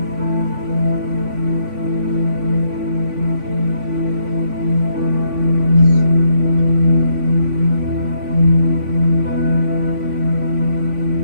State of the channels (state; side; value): late; left; 3.5 ms